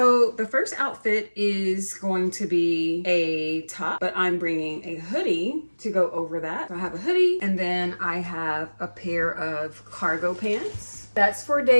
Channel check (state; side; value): inverted; both; correlation -1.00